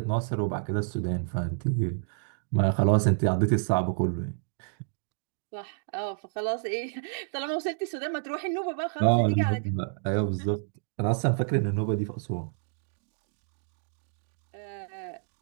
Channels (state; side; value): silent; left; digital silence